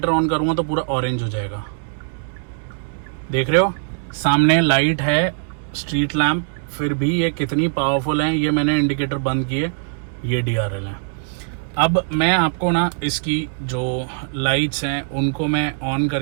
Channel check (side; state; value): left; silent; 65 dB below the other